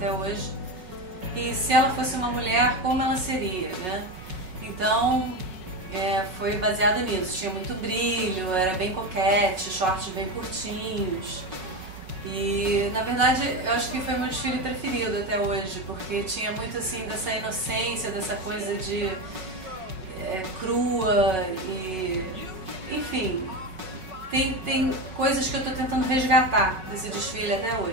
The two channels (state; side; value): late; left; 5.4 ms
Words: hoje. E se ela fosse uma mulher, como ela seria, né? Então, foi baseado nisso. Tinha muito brilho, era bem coquete, shorts bem curtinhos. E, na verdade, eu acho que foi o meu desfile preferido até hoje, porque tinha muito, assim, dessa inocência, dessa coisa de crua e... Enfim, tem coisas que eu tô tentando resgatar desse desfile até